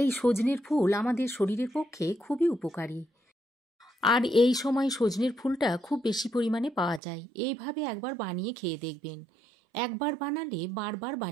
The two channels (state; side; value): drops out; left; at 7.0 s